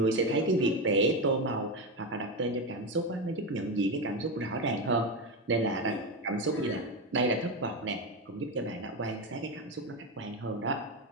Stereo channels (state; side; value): normal; both; correlation 0.14